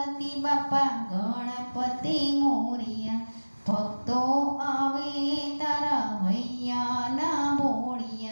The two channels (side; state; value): both; inverted; correlation -1.00